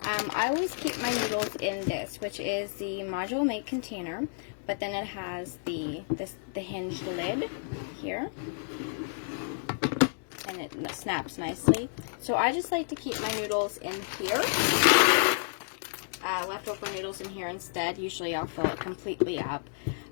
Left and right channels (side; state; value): right; silent; digital silence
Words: I always keep my noodles in this, which is the Modular Mates container, but then it has the hinged lid here, and it snaps nicely. So I just like to keep my noodles in here, leftover noodles in here instead. Usually I'll fill it completely up,